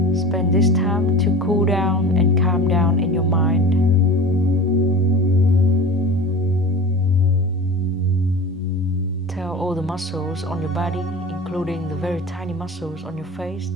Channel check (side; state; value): both; normal; correlation 0.35